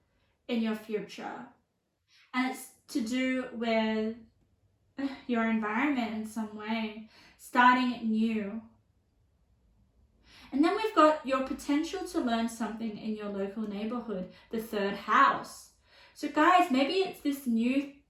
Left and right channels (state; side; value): identical; both; correlation 1.00